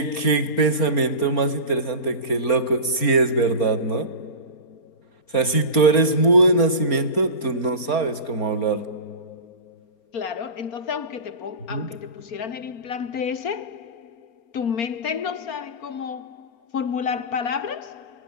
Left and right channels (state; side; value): late; right; 4.4 ms